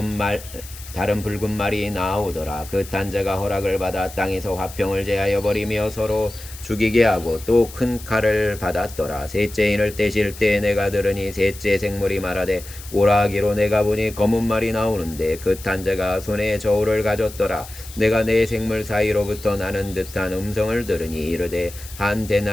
다른 붉은 말이 나오더라. 그 탄자가 허락을 받아 땅에서 화평을 제하여 버리며 서로 죽이게 하고 또 큰 칼을 받았더라. 셋째인을 떼실 때 내가 들으니 셋째 생물이 말하되 오라 하기로 내가 보니 검은 말이 나오는데 그 탄자가 손에 저울을 가졌더라. 내가 내 생물 사이로부터 나는 듯한 음성을 들으니 이르되 한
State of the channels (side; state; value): left; noise; hiss, 16 dB below the sound